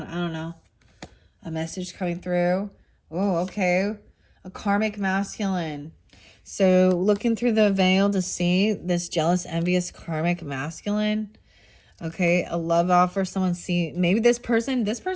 I don't know. A message coming through. Oh, okay. A karmic masculine. So looking through the veil to see this jealous, envious, karmic masculine. Okay, a love offer. Someone see, maybe this person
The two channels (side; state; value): both; identical; correlation 1.00